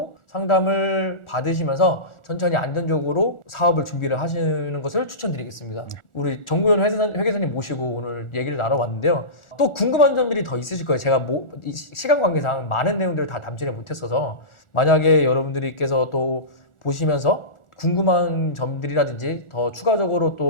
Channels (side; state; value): right; late; 1.4 ms